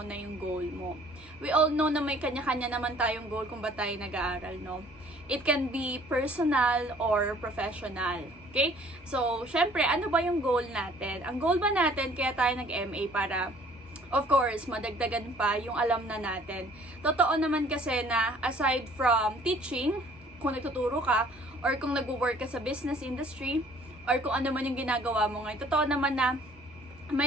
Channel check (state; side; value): normal; both; correlation 0.55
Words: yung goal mo. We all know na may kanya-kanya naman tayong goal kung ba tayo nag-aaral, no? It can be personal or professional. Okay? So, syempre, ano ba yung goal natin? Ang goal ba natin, kaya tayo nag-MA para, of course, madagdagan pa yung alam na natin. Totoo naman kasi na aside from teaching, kung nagtuturo ka, or kung nag-work ka sa business industry, or kung ano man yung ginagawa mo ngayon, totoo naman na